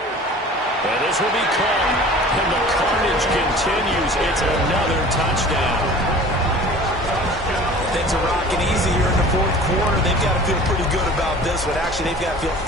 And this will be caught. And the carnage continues. It's another touchdown. Things are rocking easy here in the fourth quarter. They've got to feel pretty good about this one. Actually, they've got to feel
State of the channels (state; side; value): normal; both; correlation 0.43